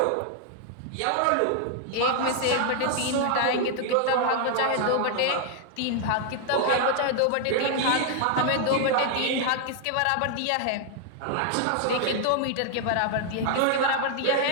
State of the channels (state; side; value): different; both; correlation 0.00